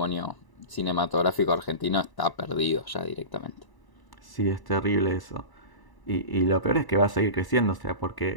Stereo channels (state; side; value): late; right; 1.0 ms